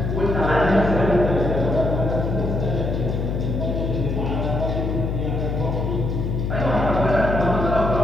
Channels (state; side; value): noise; left; hum, 1 dB below the sound